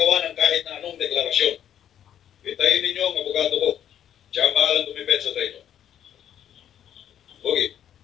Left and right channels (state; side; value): quieter; right; 9.9 dB